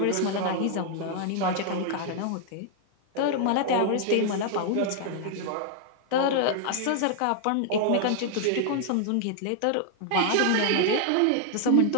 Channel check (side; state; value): both; different; correlation 0.00